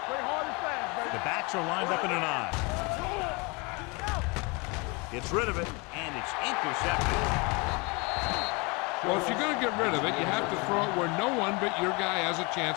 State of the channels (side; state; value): right; quieter; 28.6 dB